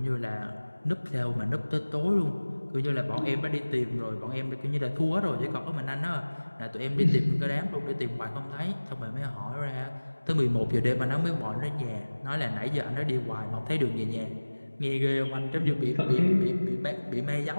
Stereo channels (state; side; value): inverted; both; correlation -1.00